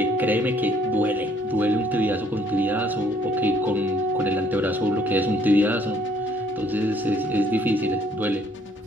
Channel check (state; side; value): normal; both; correlation 0.64